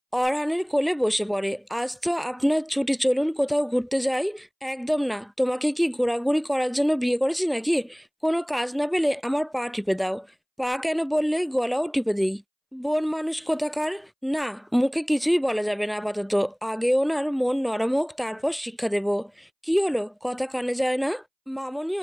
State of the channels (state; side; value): identical; both; correlation 1.00